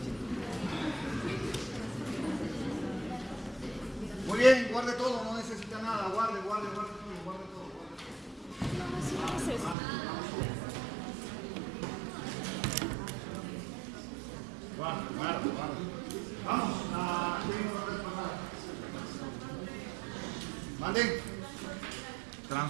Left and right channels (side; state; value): left; drops out; at 9.8 s